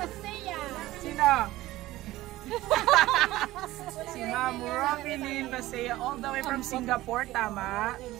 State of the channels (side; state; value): left; quieter; 16.8 dB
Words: Sino? Si Ma'am Robinine Basea, all the way from Singapore, tama?